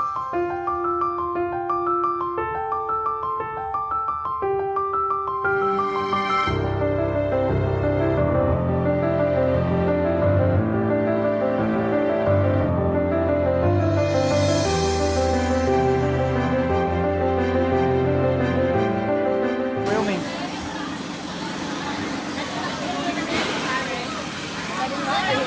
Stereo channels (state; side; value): identical; both; correlation 1.00